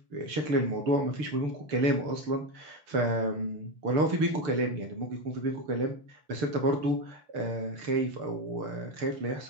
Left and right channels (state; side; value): late; left; 6.7 ms